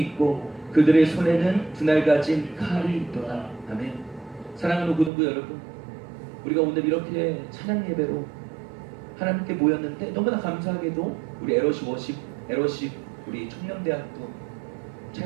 그들의 손에는 분할 가진 칼이 있도다. 아멘. 사랑하는 고등부 여러분, 우리가 오늘 이렇게 찬양 예배로 하나님께 모였는데 너무나 감사하게도 우리 에러십 우리 청년대학도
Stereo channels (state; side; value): drops out; left; at 5.1 s